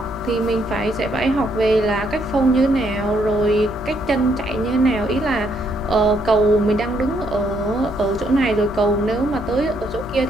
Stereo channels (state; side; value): normal; both; correlation 0.72